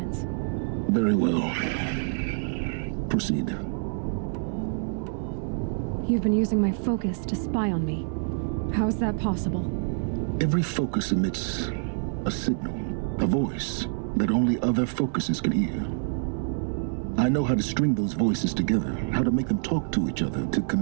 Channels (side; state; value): left; silent; 60 dB below the other